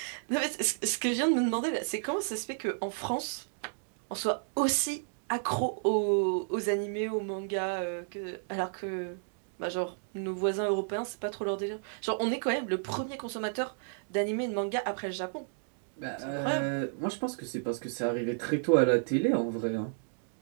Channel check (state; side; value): silent; left; digital silence